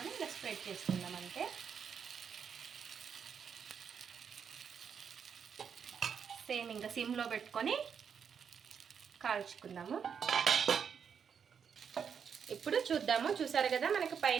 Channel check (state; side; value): quieter; left; 7.1 dB